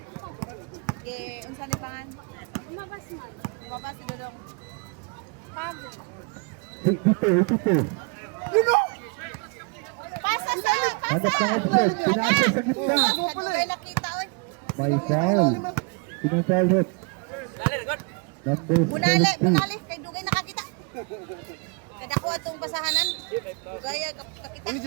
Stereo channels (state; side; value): quieter; left; 33.5 dB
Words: Okay, unsa ni pangan? Umabas si Dudong. Pago. Ito. Pasa sa Hanap ng offset. Pinasa sa gitna. Kaya nakita, oy. May foul. Pinang-foul rin. Number Bunali, 17. bunali. Kay Dugay nakakita. Kada ko atong basahanan. Dugay